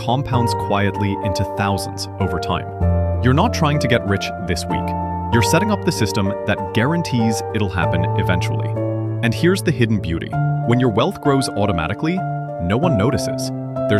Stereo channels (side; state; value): both; identical; correlation 1.00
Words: quietly into thousands over time. You're not trying to get rich this week. You're setting up the system that guarantees it'll happen eventually. And here's the hidden beauty. When your wealth grows automatically, no one notices.